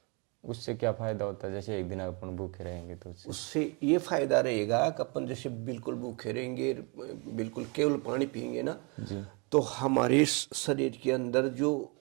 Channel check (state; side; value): quieter; left; 31.5 dB